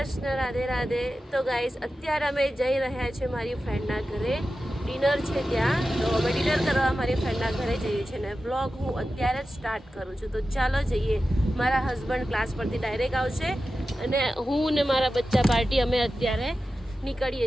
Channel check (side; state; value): both; normal; correlation 0.93